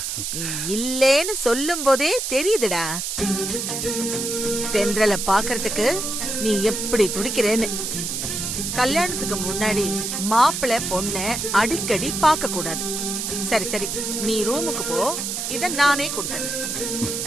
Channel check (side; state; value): right; noise; hiss, 3 dB below the sound